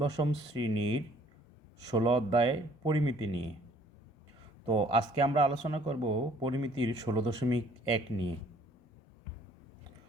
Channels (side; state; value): both; normal; correlation 0.58